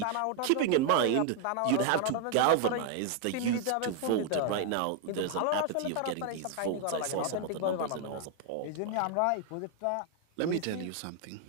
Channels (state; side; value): different; both; correlation 0.00